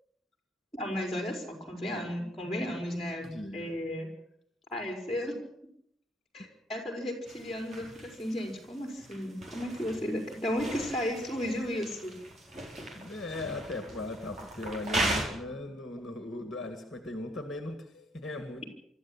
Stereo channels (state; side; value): normal; both; correlation 0.69